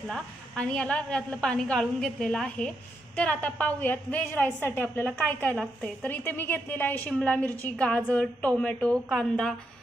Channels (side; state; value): both; normal; correlation 0.81